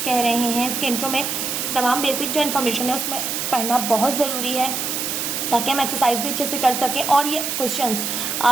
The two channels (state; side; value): noise; right; hiss, 2 dB below the sound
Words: कह रहे हैं, इसके इंट्रो में तमाम बेसिक जो इन्फॉर्मेशन है उसमें पढ़ना बहुत ज़रूरी है ताकि हम एक्सरसाइज भी अच्छे से कर सकें और ये क्वेश्चंस